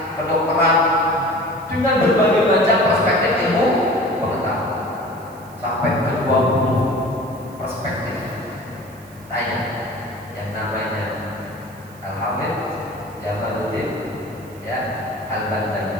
kedokteran dengan berbagai macam perspektif ilmu pengetahuan sampai ke 20 perspektif. Tanya yang namanya Al-Hafidh Jamaluddin ya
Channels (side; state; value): right; noise; hiss, 25 dB below the sound